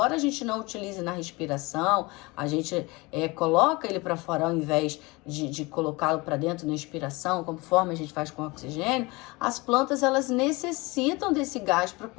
a gente não utilize na respiração, a gente coloca ele para fora ao invés de colocá-lo para dentro na expiração, conforme a gente faz com o oxigênio, as plantas elas necessitam desse gás para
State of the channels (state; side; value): quieter; right; 24.2 dB